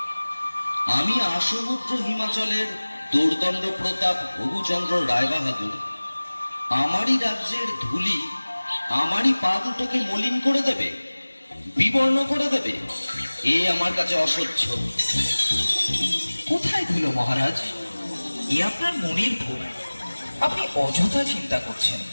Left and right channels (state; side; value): inverted; both; correlation -1.00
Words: আমি আসমুদ্র হিমাচলের দোর্দণ্ড প্রতাপ হবুচন্দ্র রায়বাহাদুর আমারই রাজ্যের ধুলি আমারই পা দুটোকে মলিন করে দেবে, বিবর্ণ করে দেবে, এ আমার কাছে অসহ্য। কোথায় ধুলো মহারাজ? এ আপনার মনের ভুল। আপনি অযথা চিন্তা করছেন।